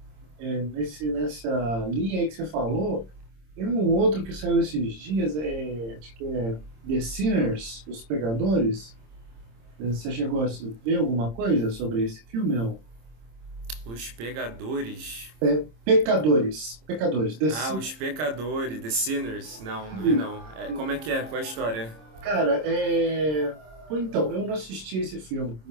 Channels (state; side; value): late; left; 26 ms